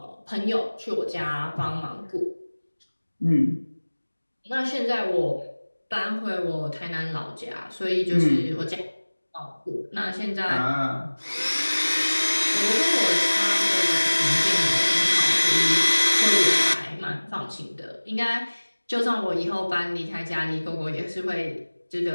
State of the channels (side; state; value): both; inverted; correlation -1.00